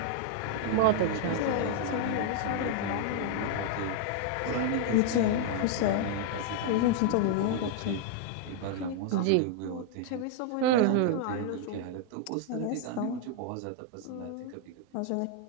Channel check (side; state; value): both; different; correlation 0.00